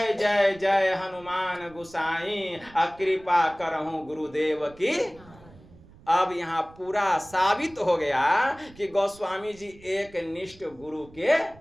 जय जय हनुमान गुसाई, कृपा करहु गुरुदेव की। अब यहाँ पूरा साबित हो गया कि गोस्वामी जी एक निष्ठ गुरु के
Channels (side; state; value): right; noise; rumble, 23 dB below the sound